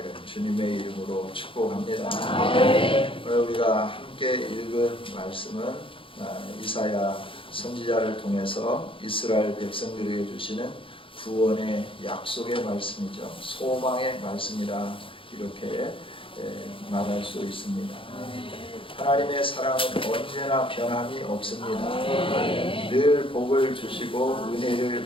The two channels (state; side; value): late; right; 0.25 ms